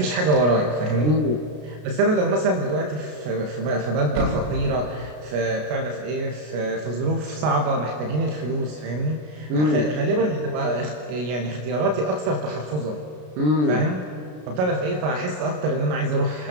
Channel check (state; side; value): late; left; 33 ms